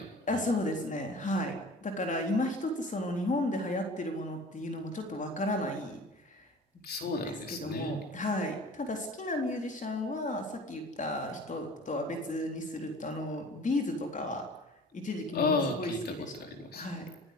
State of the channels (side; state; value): both; normal; correlation 0.43